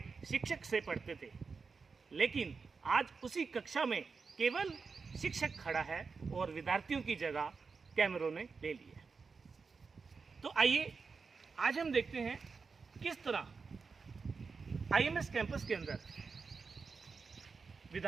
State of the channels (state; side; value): quieter; left; 4.9 dB